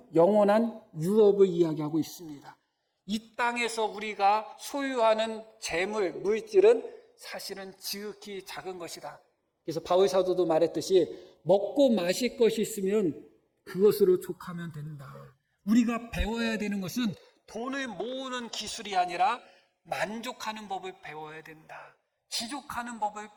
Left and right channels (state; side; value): identical; both; correlation 1.00